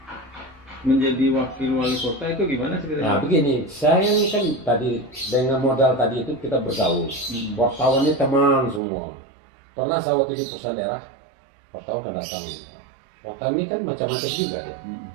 menjadi wakil wali kota itu gimana ceritanya? Nah begini, saya kan tadi dengan modal tadi itu kita bergaul. Wartawannya teman semua. Pernah saya waktu di perusahaan daerah, wartawan kan datang. Wartawan ini kan macam-macam juga dia.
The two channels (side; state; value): left; drops out; at 8.8 s